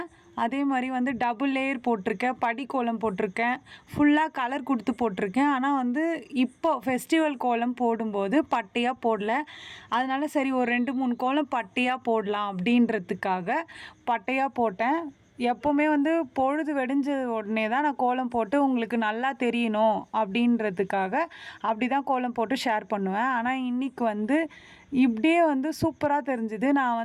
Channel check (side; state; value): both; identical; correlation 1.00